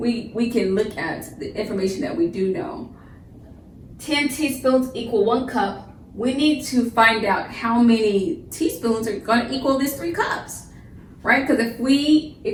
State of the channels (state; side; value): identical; both; correlation 1.00